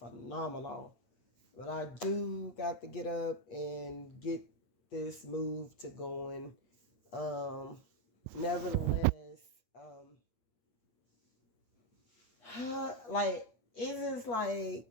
but I do got to get up and get this move to going. Um, Nevertheless, like it is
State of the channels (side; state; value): right; late; 8.3 ms